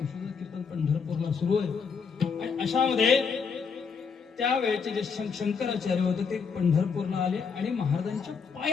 कीर्तन पंढरपूरला सुरू आहे. आणि अशामध्ये त्यावेळेचे जे शंकराचार्य होते ते पंढरपूरला आले आणि महाराजांच्या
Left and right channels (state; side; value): quieter; right; 5.8 dB